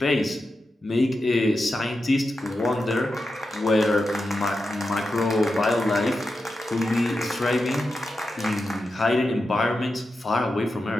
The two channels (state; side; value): normal; both; correlation 0.89